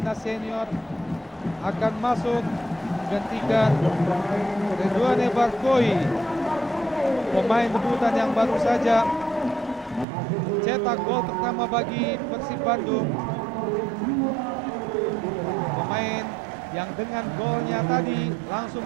senior, akan masuk menggantikan Redouane Barkoi, pemain debutan yang baru saja mencetak gol pertama bagi Persib Bandung. Pemain yang dengan golnya tadi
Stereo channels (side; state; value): left; drops out; at 10.1 s